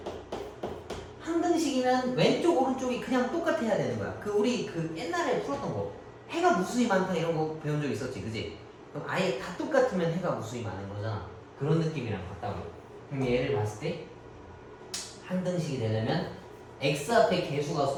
항등식이면 왼쪽 오른쪽이 그냥 똑같아야 되는 거야. 우리 옛날에 풀었던 거 해가 무수히 많다 이런 거 배운 적 있었지, 그지? 그럼 아예 다 똑같으면 해가 무수히 많은 거잖아. 그런 느낌이랑 같다고. 그럼 얘를 봤을 때 항등식이 되려면 x 앞에 개수가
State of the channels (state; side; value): identical; both; correlation 1.00